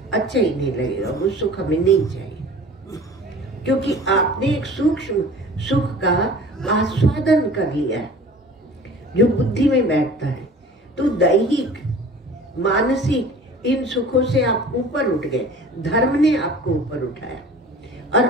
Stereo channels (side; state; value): both; normal; correlation 0.43